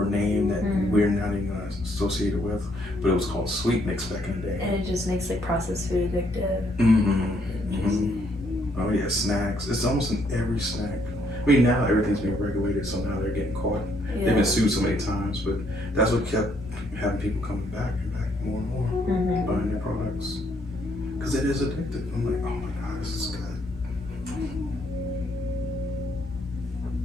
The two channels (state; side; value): normal; both; correlation 0.70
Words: or name that we're not even associated with, but it was called sweet mix back in the day. And it just makes like processed food addictive. Oh yeah, snacks. It's almost in every snack. I mean, now everything's being regulated, so now they're getting caught. Yeah. They've been sued so many times, but that's what kept having people coming back and back more and more, buying their products, because it is addictive. I'm like, oh my God, this is good.